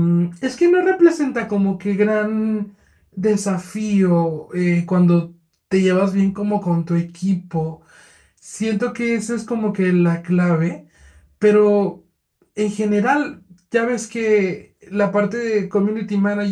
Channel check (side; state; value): both; identical; correlation 1.00